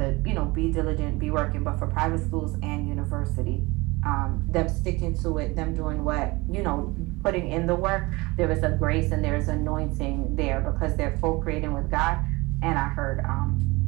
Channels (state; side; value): quieter; left; 23.2 dB